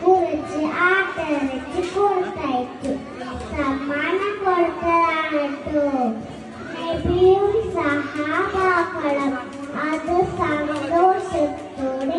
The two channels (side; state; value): both; identical; correlation 1.00